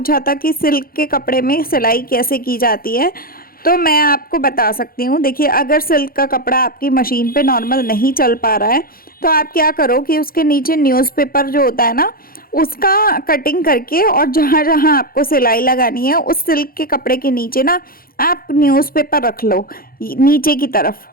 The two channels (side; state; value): right; late; 0.42 ms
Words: था कि सिल्क के कपड़े में सिलाई कैसे की जाती है। तो मैं आपको बता सकती हूँ। देखिए, अगर सिल्क का कपड़ा आपकी मशीन पे नॉर्मल नहीं चल पा रहा है तो आप क्या करो कि उसके नीचे न्यूज़पेपर जो होता है ना, उसका कटिंग करके, और जहाँ जहाँ आपको सिलाई लगानी है उस सिल्क के कपड़े के नीचे ना आप न्यूज़पेपर रख लो नीचे की तरफ।